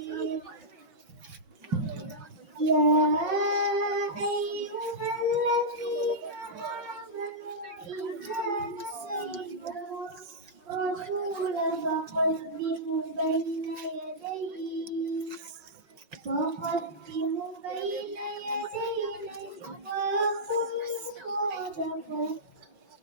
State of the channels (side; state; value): left; late; 6.6 ms